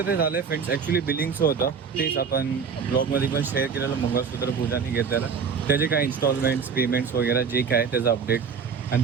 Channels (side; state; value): left; quieter; 6.1 dB